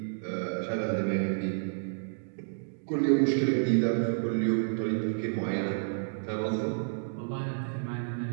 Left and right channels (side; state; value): left; silent; digital silence